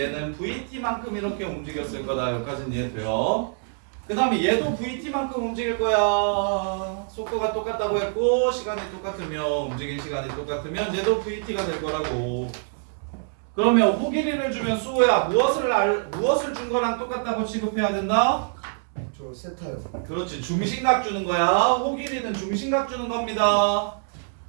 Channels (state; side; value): silent; left; 62 dB below the other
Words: vt만큼 이렇게 움직였을 거다. 여기까지는 이해돼요. 그 다음에 얘도 vt만큼 움직일 거야. 속도가 똑같다고 했고 시간이 똑같으면 움직인 시간이 똑같으면 얘도 vt가 될 거라고. 그러면 호길이를 주면 수호야 무엇을 준 거랑 똑같다고 취급해야 된다? 저 세타요. 그렇지, 중심각 주는 거야. 호길이는 중심각 주는 겁니다.